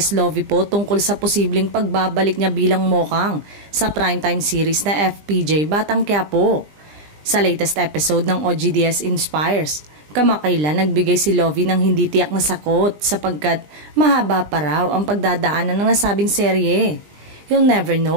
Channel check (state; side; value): late; left; 20 ms